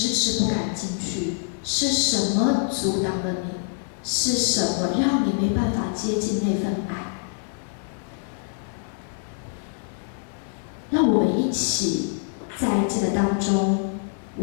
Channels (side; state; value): right; silent; 62 dB below the other